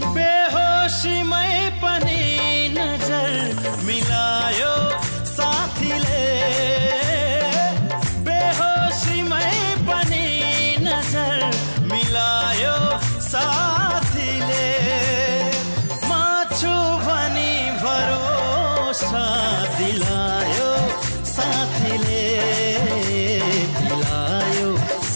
बेहोसीमै पनि नजर मिलायो साथीले बेहोसीमै पनि नजर मिलायो साथीले म छु भनी भरोसा दिलायो साथीले पिलायो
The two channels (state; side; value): inverted; both; correlation -1.00